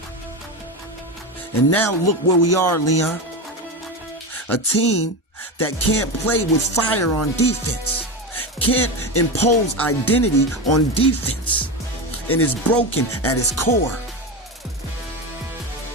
And now look where we are, Leon. A team that can't play with fire on defense, can't impose identity on defense, and is broken at its core.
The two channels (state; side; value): normal; both; correlation 0.19